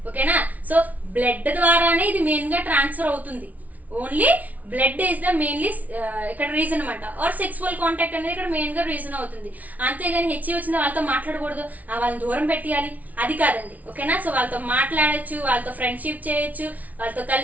ఓకేనా. సో బ్లడ్ ద్వారానే ఇది మెయిన్ గా ట్రాన్స్ఫర్ అవుతుంది. Only blood is the mainly ఇక్కడ రీజన్ అనమాట. ఆర్ సెక్సువల్ కాంటాక్ట్ అనేది ఇక్కడ మెయిన్ గా రీజన్ అవుతుంది. అంతేగాని హెచ్ఐవి వచ్చిన వాళ్ళతో మాట్లాడకూడదు, వాళ్ళని దూరం పెట్టేయాలి అది కాదండి. ఓకేనా. సో వాళ్ళతో మాట్లాడచ్చు, వాళ్ళతో ఫ్రెండ్షిప్ చేయొచ్చు, వాళ్ళతో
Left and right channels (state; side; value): late; left; 0.073 ms